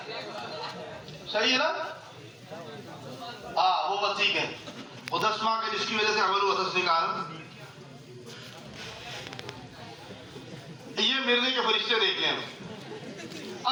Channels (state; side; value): identical; both; correlation 1.00